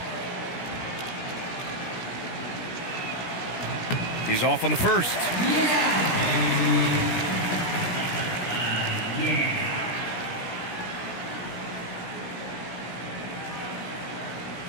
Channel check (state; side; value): late; right; 17 ms